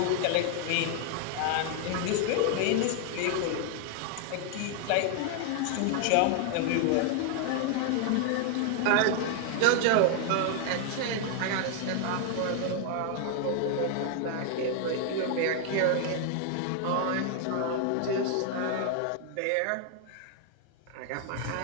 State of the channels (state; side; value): different; both; correlation 0.00